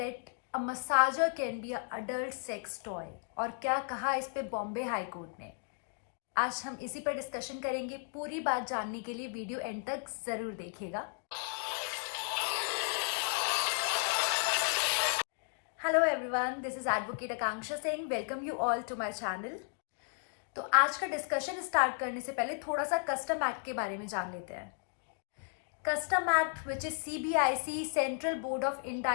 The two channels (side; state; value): right; silent; 55 dB below the other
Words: a massager can be a adult sex toy, और क्या कहा इस पे बॉम्बे हाई कोर्ट ने। आज हम इसी पर डिस्कशन करेंगे। पूरी बात जानने के लिए वीडियो एंड तक जरूर देखिएगा। Hello everyone, this is advocate Akanksha Singh. Welcome you all to my channel. तो आज का डिस्कशन स्टार्ट करने से पहले थोड़ा सा कस्टम एक्ट के बारे में जान लेते हैं। Custom Act, which is CBIC, Central Board of